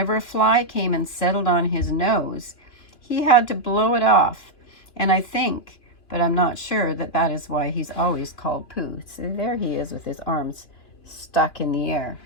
a fly came and settled on his nose, he had to blow it off. And I think, but I'm not sure, that is why he's always called Pooh. So there he is with his arms stuck in the air.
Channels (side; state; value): right; late; 2.7 ms